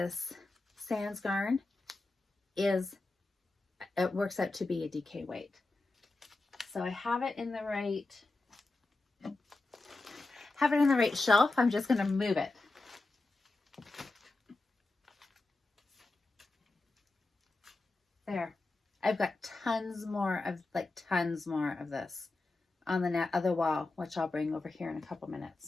Sans Garn it works out to be a DK weight. So I have it in the right shelf. I'm just going to move it. There. I've got tons more of this on the other wall, which I'll bring over here in a couple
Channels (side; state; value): right; quieter; 3.3 dB